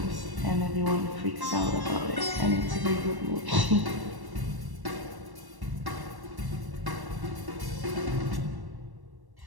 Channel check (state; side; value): late; left; 1.1 ms